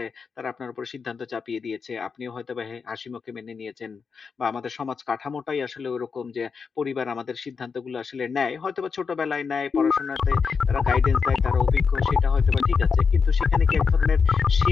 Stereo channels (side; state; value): right; quieter; 5.5 dB